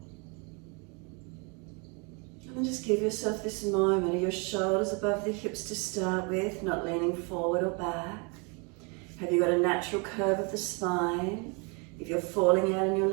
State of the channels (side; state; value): left; quieter; 32.7 dB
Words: And then just give yourself this moment of your shoulders above the hips to start with, not leaning forward or back. Have you got a natural curve of the spine? If you're falling out in your